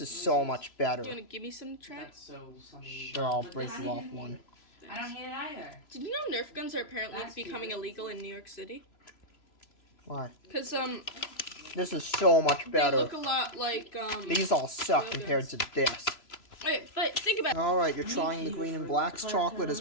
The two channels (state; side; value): late; right; 3.0 ms